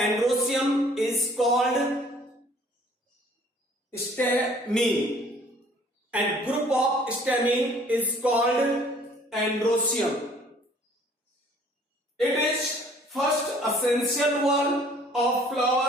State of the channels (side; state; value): both; normal; correlation 0.56